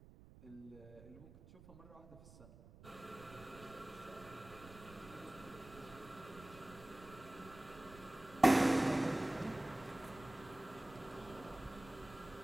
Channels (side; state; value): right; noise; rumble, 19 dB below the sound